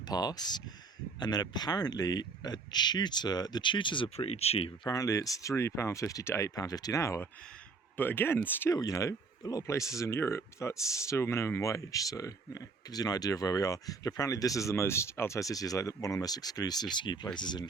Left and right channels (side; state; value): left; quieter; 4.4 dB